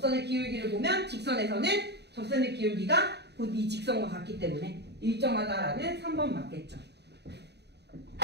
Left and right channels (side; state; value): left; late; 0.49 ms